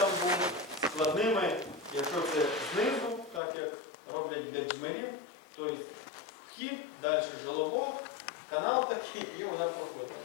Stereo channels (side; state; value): right; drops out; at 3.4 s